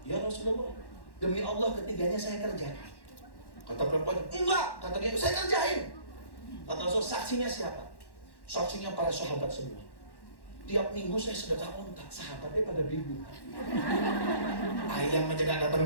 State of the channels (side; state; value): right; late; 1.1 ms